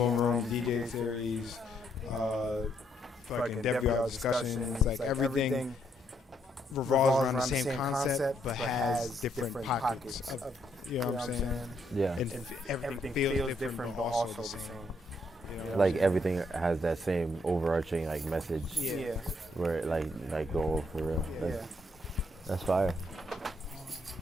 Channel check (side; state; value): both; normal; correlation 0.74